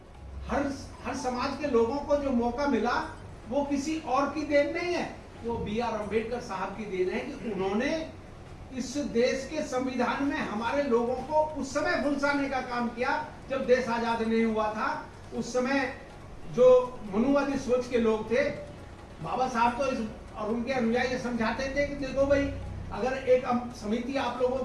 हर समाज के लोगों को जो मौका मिला वो किसी और की देन नहीं है, वो B.R. अम्बेडकर साहब की देन है कि उन्होंने इस देश के संविधान में हमारे लोगों को उस समय फुलसाने का काम किया जब देश आजाद नहीं हुआ था। उस समय जो मनुवादी सोच के लोग थे, बाबा साहब तो और उनके अनुयायी समझाते थे कि देखो भाई, अगर एक समिति आप लोगों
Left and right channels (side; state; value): both; identical; correlation 1.00